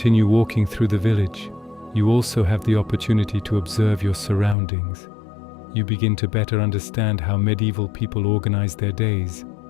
walking through the village, you also have the opportunity to observe your surroundings. You begin to better understand how medieval people organized their days,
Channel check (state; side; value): drops out; right; at 4.5 s